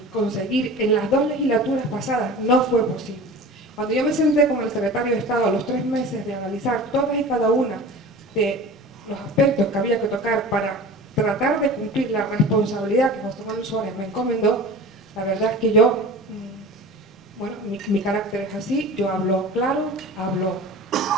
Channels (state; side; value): normal; both; correlation 0.36